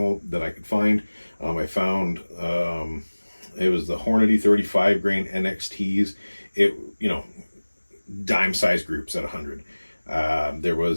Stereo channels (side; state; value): both; inverted; correlation -1.00